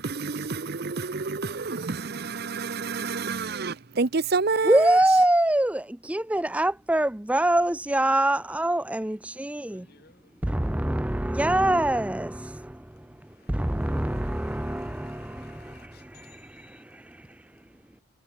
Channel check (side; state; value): both; normal; correlation 0.79